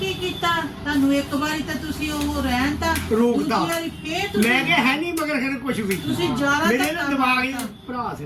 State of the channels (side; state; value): both; identical; correlation 1.00